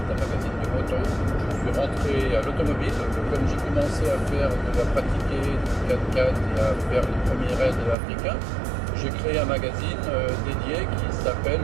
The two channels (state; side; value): drops out; left; at 8.0 s